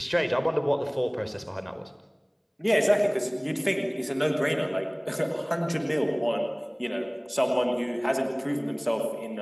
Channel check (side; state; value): both; identical; correlation 1.00